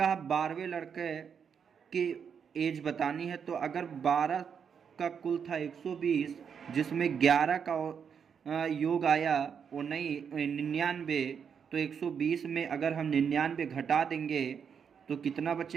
12वें लड़के की एज बतानी है, तो अगर 12 का कुल था 120, जिसमें 11 का योग आया वो नहीं 99, तो 120 में अगर हम 99 घटा देंगे तो कितना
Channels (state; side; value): quieter; left; 7.1 dB